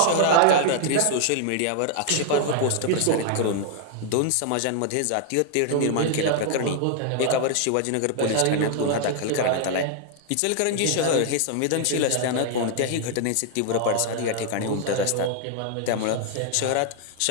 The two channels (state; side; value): different; both; correlation 0.00